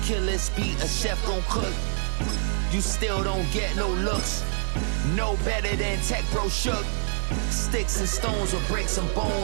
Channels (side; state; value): left; silent; digital silence